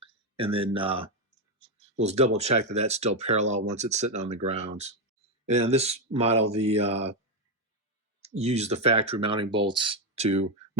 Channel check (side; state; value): both; normal; correlation 0.05